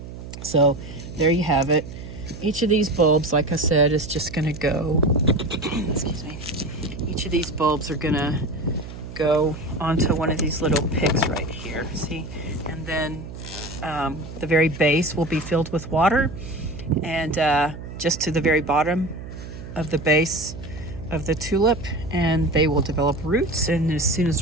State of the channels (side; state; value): right; noise; hum, 12 dB below the sound